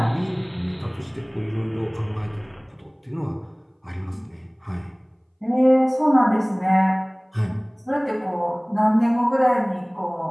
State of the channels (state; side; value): identical; both; correlation 1.00